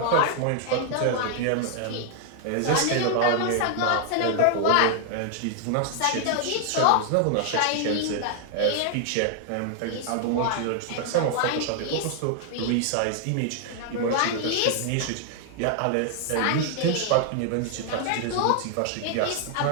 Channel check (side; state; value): both; different; correlation 0.00